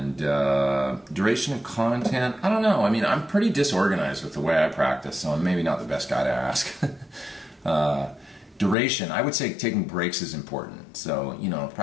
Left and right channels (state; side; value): drops out; right; at 8.8 s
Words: duration of content, I don't know. I mean, I'm pretty disorganized with the way I practice, so I'm maybe not the best guy to ask. Duration, I would say taking breaks is important. So,